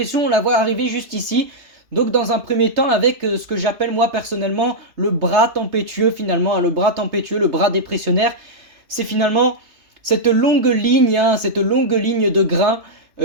on la voit arriver juste ici. Donc dans un premier temps avec ce que j'appelle moi personnellement le bras tempétueux finalement, hein, le bras tempétueux, le bras dépressionnaire. C'est finalement cette longue ligne, hein, cette longue ligne de grains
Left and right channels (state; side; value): late; left; 3.0 ms